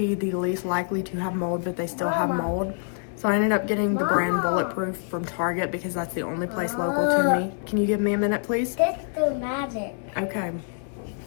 the least likely to have mold, but they still have mold. So I ended up getting the brand Bulletproof from Target, because that's the only place local to me. Can you give me a minute, please? That's the magic. Okay.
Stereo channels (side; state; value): right; silent; 61 dB below the other